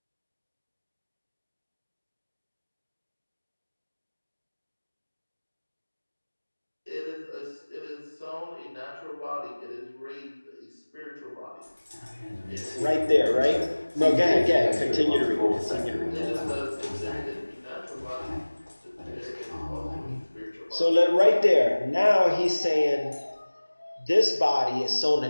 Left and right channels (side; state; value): both; inverted; correlation -1.00